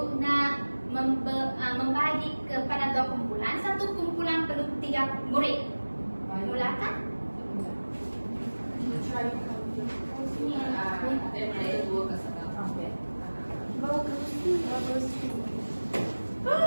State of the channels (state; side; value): inverted; both; correlation -1.00